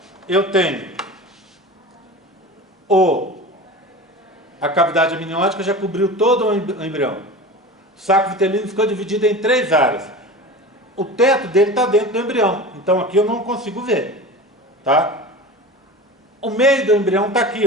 eu tenho a cavidade amniótica já cobriu todo o embrião. O saco vitelino ficou dividido em 3 áreas. O teto dele está dentro do embrião, então aqui eu não consigo ver, tá? O meio do embrião está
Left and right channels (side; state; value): both; normal; correlation 0.33